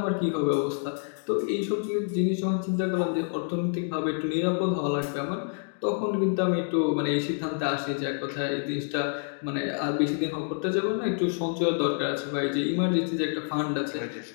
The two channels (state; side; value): silent; right; 60 dB below the other